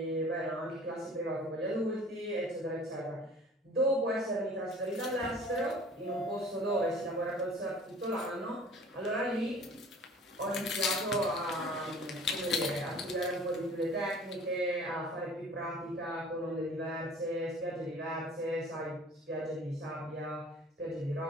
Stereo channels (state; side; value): normal; both; correlation 0.47